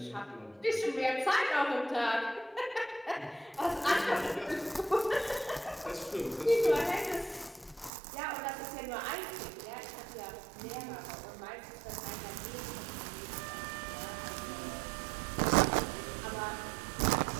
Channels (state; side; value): drops out; left; at 7.9 s